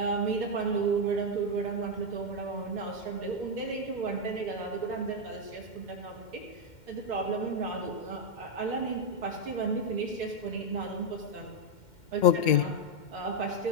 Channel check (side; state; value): right; late; 2.1 ms